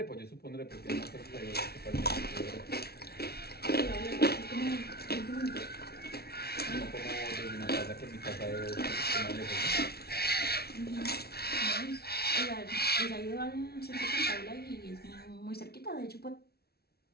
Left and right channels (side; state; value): right; late; 0.45 ms